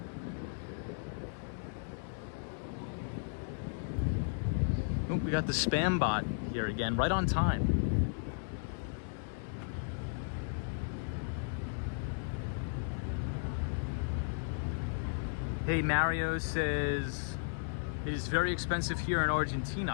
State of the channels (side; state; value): right; silent; digital silence